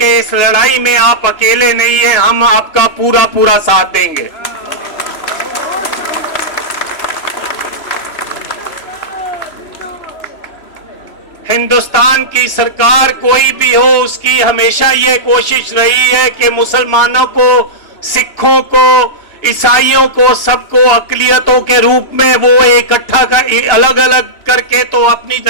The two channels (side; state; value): right; late; 3.0 ms